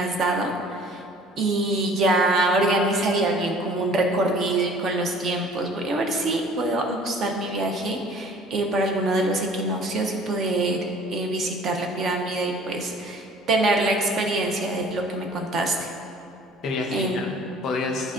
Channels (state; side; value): normal; both; correlation 0.50